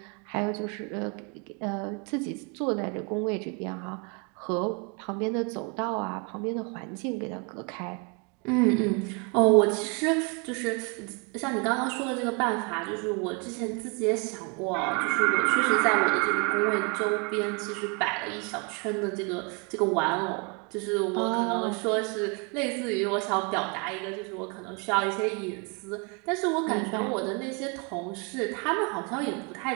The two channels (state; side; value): quieter; left; 33.1 dB